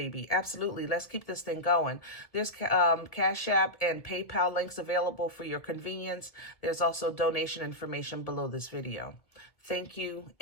Absolutely. Let's keep this thing going. There's Cash App and PayPal links available for your convenience. There's also donation information below this video. Thank you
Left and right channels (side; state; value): right; late; 1.7 ms